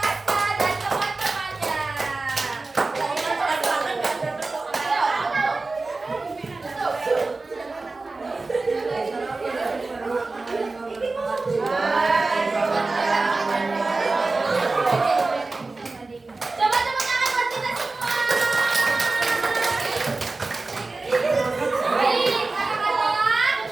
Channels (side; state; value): left; quieter; 3.5 dB